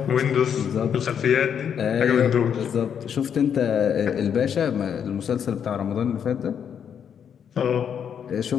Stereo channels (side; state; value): right; quieter; 8.0 dB